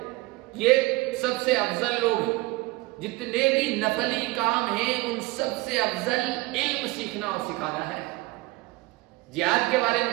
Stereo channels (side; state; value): left; quieter; 21.7 dB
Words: یہ سب سے افضل لوگ ہیں، جتنے بھی نفلی کام ہیں ان سب سے افضل علم سیکھنا اور سکھانا ہے۔ جہاد کے بارے میں